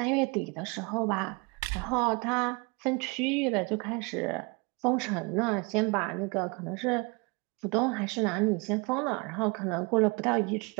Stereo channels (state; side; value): quieter; left; 29.2 dB